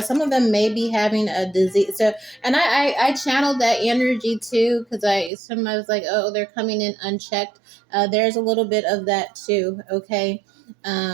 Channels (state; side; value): drops out; left; at 5.3 s